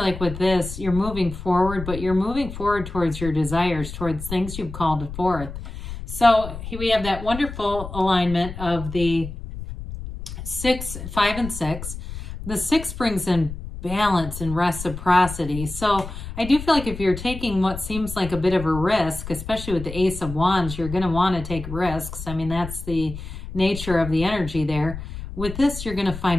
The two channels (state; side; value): noise; left; rumble, 10 dB below the sound